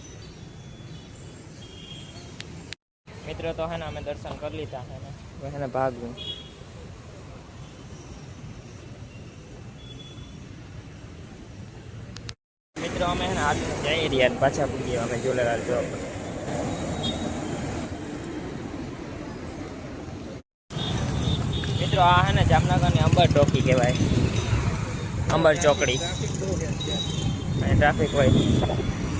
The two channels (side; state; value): both; identical; correlation 1.00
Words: મિત્રો, તો હે ને અમે દર્શન કરી લીધા હે ને ભાગવું. મિત્રો, અમે હે ને હાથ જઈ રહ્યા પાછા પૂગીએ અમે ઝુલેલાલ ચોક. મિત્રો, આ હે ને જામનગરની અંબર ચોકી કહેવાય, અંબર ચોકડી. અને ટ્રાફિક હોય.